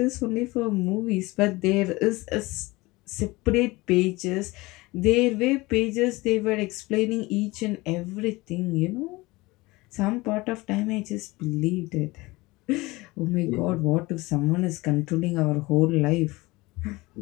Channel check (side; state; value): right; quieter; 21.8 dB